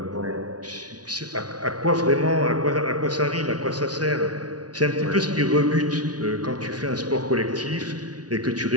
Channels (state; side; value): late; left; 0.69 ms